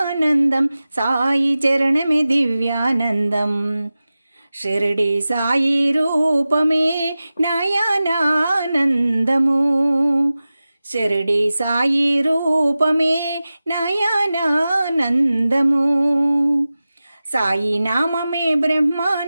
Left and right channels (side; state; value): both; inverted; correlation -0.95